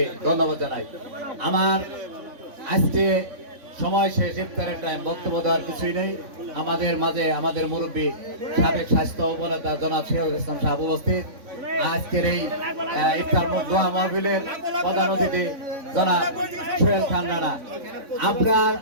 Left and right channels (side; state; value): left; late; 3.6 ms